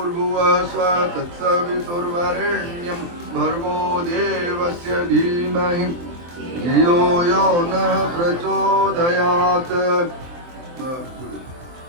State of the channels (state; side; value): late; left; 23 ms